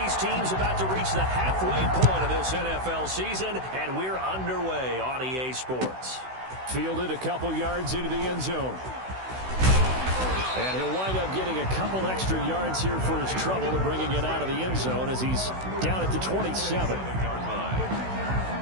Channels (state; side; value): late; left; 16 ms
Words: teams about to reach the halfway point of this NFL season, and we're underway on EA Sports. Fielded a couple yards into the end zone. And he'll wind up getting a couple extra yards here for his trouble to bringing it out of the end zone as he's down at the 27.